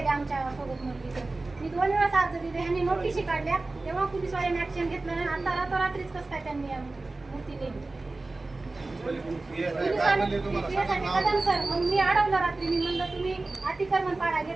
आमच्या सोबत मुलगीचं. मी 2 वेळाच अर्ज दिले, ह्यांनी नोटीसी काढल्या. तेव्हा पोलिसवाल्यांनी ऍक्शन घेतलं नाही. आता रात्रीच कसं काय त्यांनी मूर्ती नेली सर. मग मी अडवलं रात्री. मी म्हणलं तुम्ही अतिक्रमण पाडा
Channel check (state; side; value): quieter; left; 3.2 dB